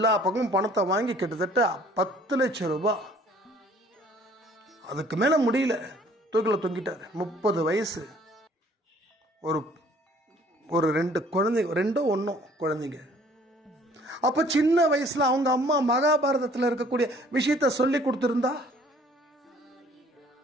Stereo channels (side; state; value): both; normal; correlation 0.56